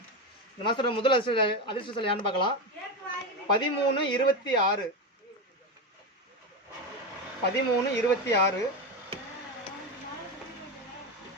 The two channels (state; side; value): normal; both; correlation 0.15